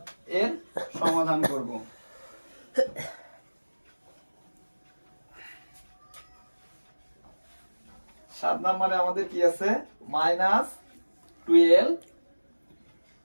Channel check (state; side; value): inverted; both; correlation -1.00